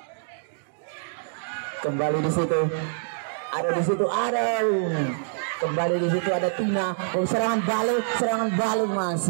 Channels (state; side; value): silent; left; digital silence